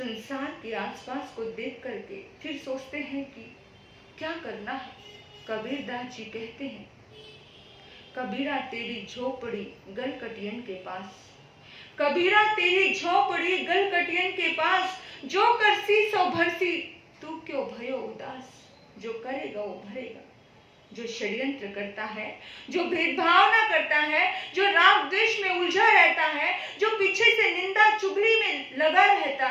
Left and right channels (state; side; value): identical; both; correlation 1.00